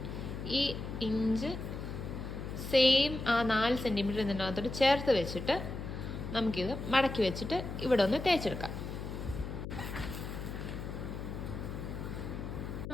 ഈ ഇഞ്ച് സെയിം ആ 4 സെൻറ്റിമീറ്റർ ഇതിനകത്തോട്ട് ചേർത്ത് വെച്ചിട്ട് നമുക്കിത് മടക്കി വെച്ചിട്ട് ഇവിടെ ഒന്ന് തേച്ചെടുക്കാം.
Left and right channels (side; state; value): left; noise; hum, 7 dB below the sound